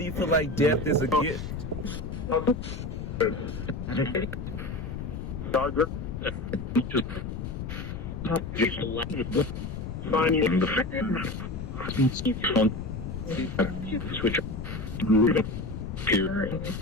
you feel like death is a gift?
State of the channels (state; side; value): noise; left; rumble, 6 dB below the sound